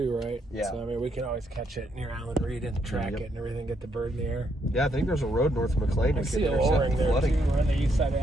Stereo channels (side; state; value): both; normal; correlation 0.75